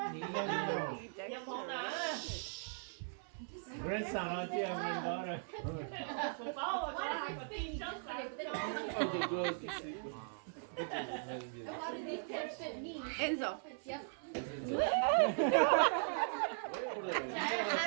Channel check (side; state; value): left; silent; 52 dB below the other